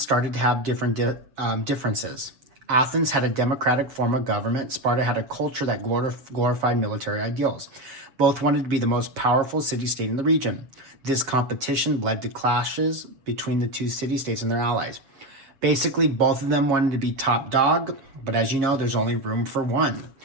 to have different differences. Athens had a democratic form of government. Sparta had a culture that glorified military ideals. Both wanted to be the most powerful city-state in the region. This competition led to clashes between the 2 city-states and their allies. Basically, both of them wanted to be top dog, but as you know, there's only room for one.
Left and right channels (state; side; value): late; left; 7.7 ms